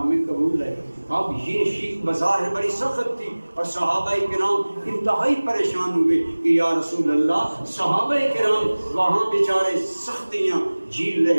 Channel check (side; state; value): both; inverted; correlation -1.00